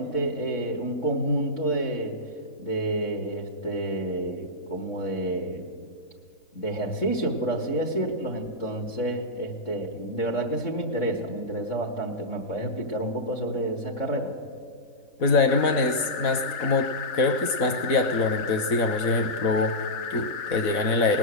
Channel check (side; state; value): right; late; 4.1 ms